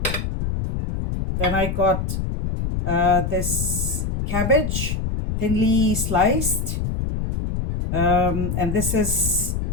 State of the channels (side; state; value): left; noise; rumble, 2 dB below the sound